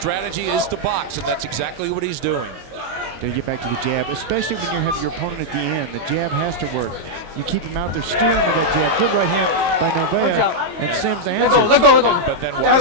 is to box, and that's exactly what he's doing. They get back to the jab, especially when you have your opponent at the end. The jab has to work. You keep him out there steering with that jab. Good right hand by Novea, and Sims answers. Let go. But then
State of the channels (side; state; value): left; late; 22 ms